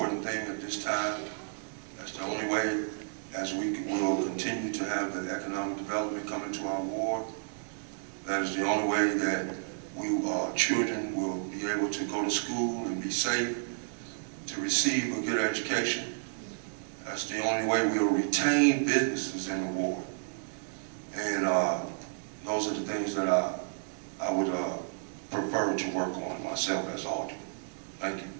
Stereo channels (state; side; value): silent; left; 57 dB below the other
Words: thing at this time. That's the only way, as we will continue to have the economic development coming to our ward. That is the only way that children will be able to go to school and be safe, to receive a good education. That's the only way we'll retain businesses in the ward. And those are the things that I would prefer to work on myself as alderman. Thank you.